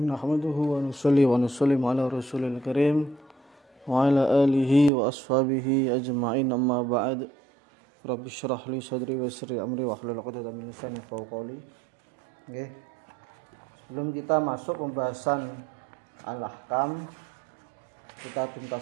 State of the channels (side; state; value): left; drops out; at 4.9 s